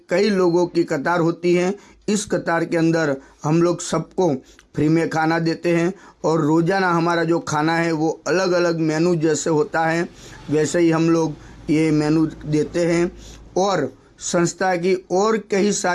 कई लोगों की कतार होती है। इस कतार के अंदर हम लोग सबको फ्री में खाना देते हैं और रोज़ाना हमारा जो खाना है वो अलग अलग मेनू जैसे होता है वैसे ही हम लोग ये मेनू देते हैं। और संस्था की और कई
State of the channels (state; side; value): identical; both; correlation 1.00